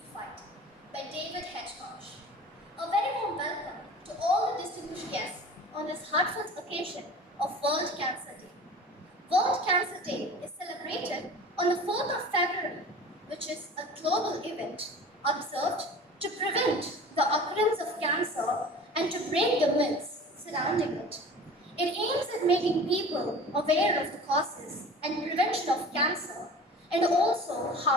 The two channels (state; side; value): normal; both; correlation 0.40